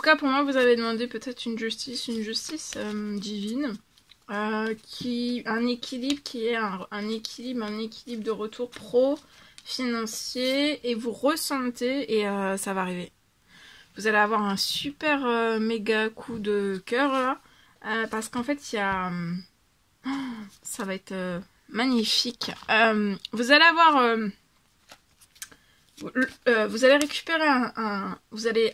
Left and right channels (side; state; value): both; identical; correlation 1.00